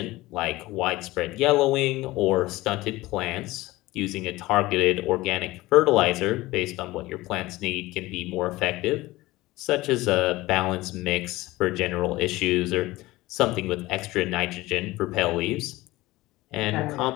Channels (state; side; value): quieter; right; 19.0 dB